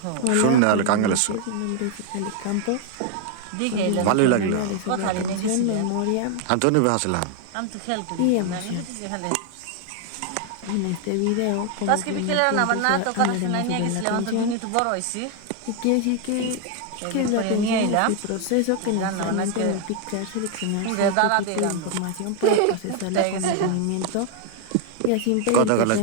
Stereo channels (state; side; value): different; both; correlation 0.00